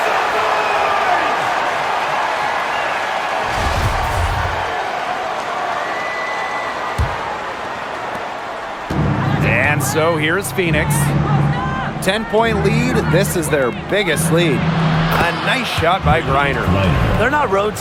And so here's Phoenix. 10-point lead. This is their biggest lead. A nice shot by Griner. They're not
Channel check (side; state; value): both; identical; correlation 1.00